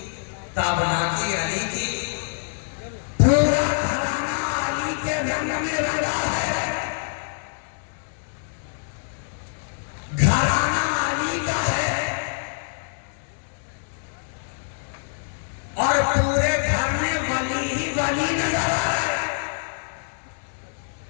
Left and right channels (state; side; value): silent; right; digital silence